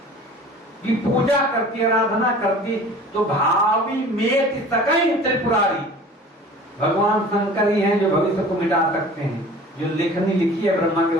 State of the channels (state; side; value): normal; both; correlation 0.43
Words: की पूजा करती, आराधना करती, तो भावी मेति सकई त्रिपुरारी, भगवान शंकर ही हैं जो भविष्य को मिटा सकते हैं। जो लेखनी लिखी है ब्रह्मा के